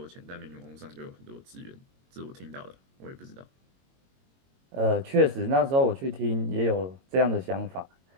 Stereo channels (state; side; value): late; left; 22 ms